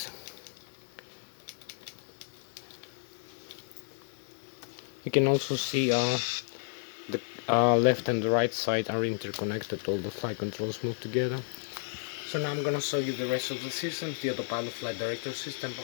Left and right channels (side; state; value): right; silent; digital silence